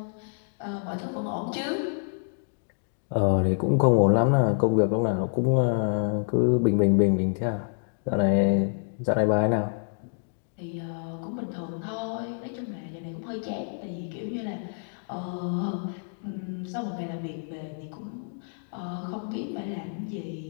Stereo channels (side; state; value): right; silent; digital silence